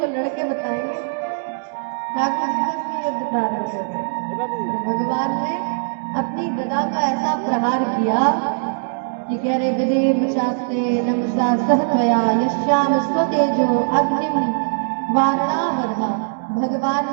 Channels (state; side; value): silent; left; digital silence